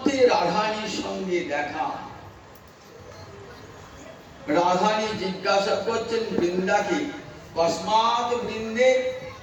রাধানীর সঙ্গে দেখা। রাধানী জিজ্ঞাসা করছেন বৃন্দাকে, কস্মাৎ বৃন্দে,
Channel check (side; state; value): both; identical; correlation 1.00